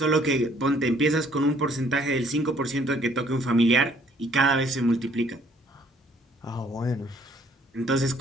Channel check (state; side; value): normal; both; correlation 0.62